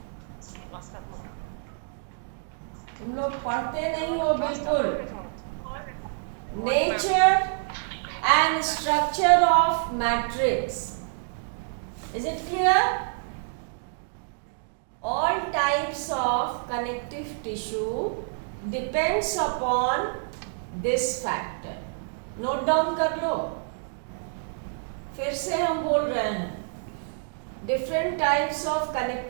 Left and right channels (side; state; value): left; silent; digital silence